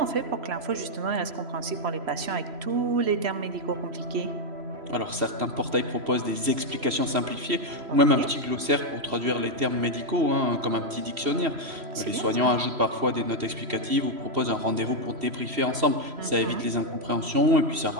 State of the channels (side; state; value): left; late; 3.0 ms